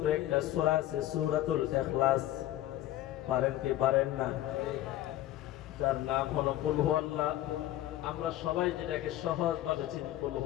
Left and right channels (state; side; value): quieter; right; 14.1 dB